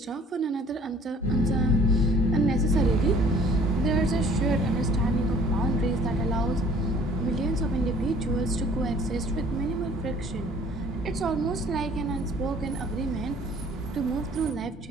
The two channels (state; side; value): normal; both; correlation 0.54